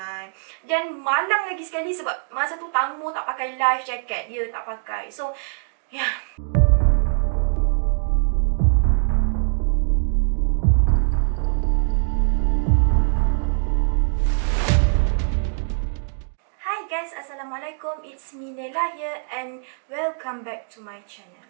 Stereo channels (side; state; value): left; silent; digital silence